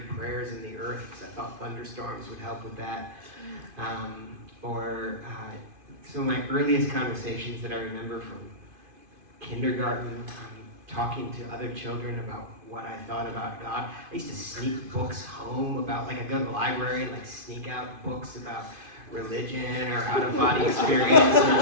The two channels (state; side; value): late; left; 2.5 ms